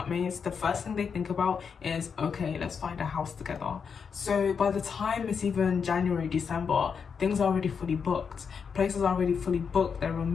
the first thing they think about is, okay, let's find a house together. So by the time it's even January, December, things are already fully booked. Places are already fully booked, they're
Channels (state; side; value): quieter; right; 6.3 dB